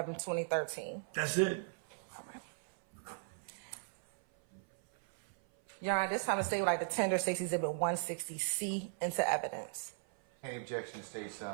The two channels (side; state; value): left; silent; 53 dB below the other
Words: 2013? That's it. All right. Your Honor, this time the state would like to tender State's Exhibit 160C into evidence. Any objection to State's